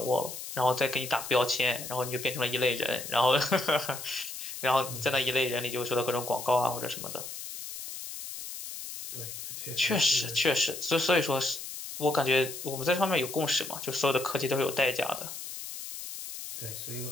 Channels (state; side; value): noise; left; hiss, 9 dB below the sound